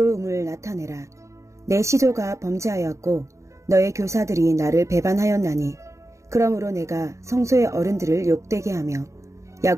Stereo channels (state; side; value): late; left; 0.14 ms